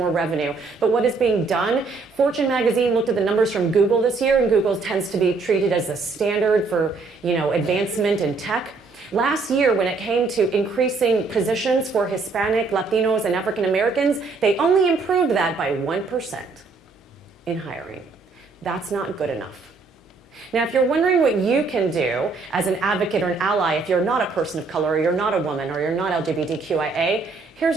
revenue. But what is being done? Fortune magazine looked at the numbers from Google this year, and Google tends to be treated as the standard for, advancement in tech. Last year, when it came to increasing positions for Hispanic, Latinos, and African Americans, they only improved that by 1% in hiring. That's not good enough. Now, if you're wondering what you can do as an advocate or an ally if you're not a person of color, or you're not a woman, or you're not LGBTQIA,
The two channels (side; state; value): left; quieter; 4.1 dB